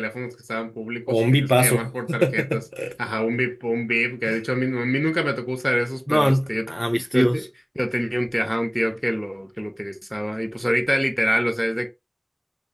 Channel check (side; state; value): both; identical; correlation 1.00